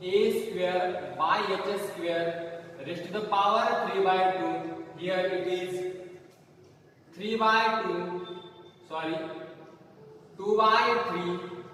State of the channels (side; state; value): both; identical; correlation 1.00